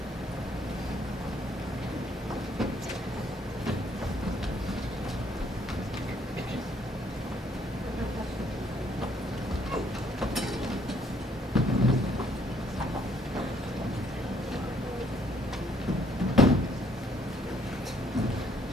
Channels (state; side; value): normal; both; correlation 0.65